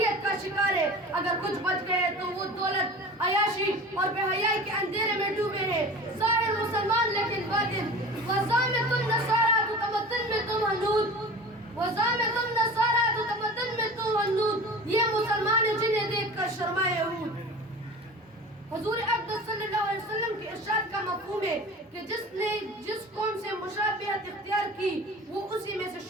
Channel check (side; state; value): both; normal; correlation 0.37